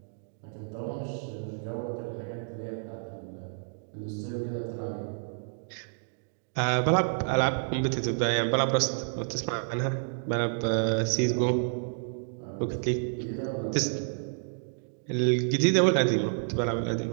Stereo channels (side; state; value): left; silent; digital silence